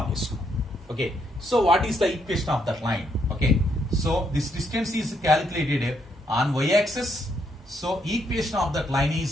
చేసుకున్నాం. Okay. So, what is the equation of that line? Okay. So, this distance is calculated on y-axis. So, equation of that line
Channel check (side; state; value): both; normal; correlation 0.75